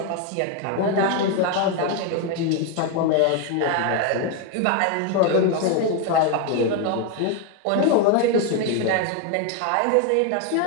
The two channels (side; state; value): both; different; correlation 0.01